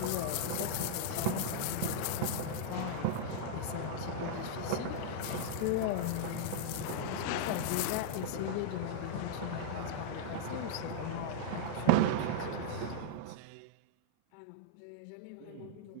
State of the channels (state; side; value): different; both; correlation -0.02